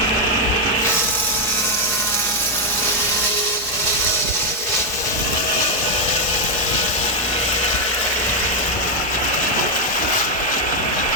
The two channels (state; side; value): normal; both; correlation 0.01